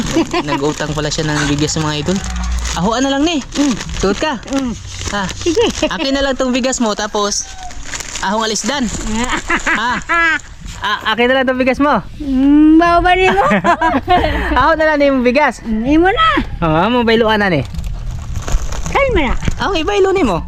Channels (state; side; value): identical; both; correlation 1.00